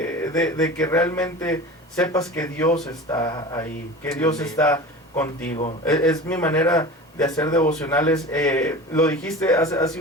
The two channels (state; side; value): normal; both; correlation 0.34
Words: que realmente sepas que Dios está ahí, que Dios está contigo. Es mi manera de hacer devocionales. Lo dijiste hace